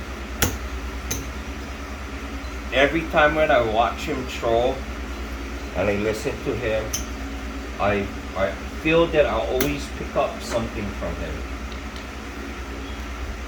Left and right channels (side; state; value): both; identical; correlation 1.00